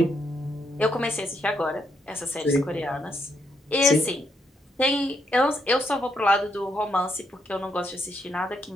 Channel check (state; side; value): normal; both; correlation 0.76